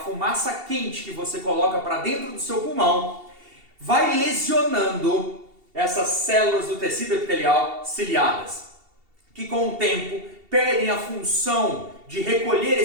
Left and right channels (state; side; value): late; left; 2.7 ms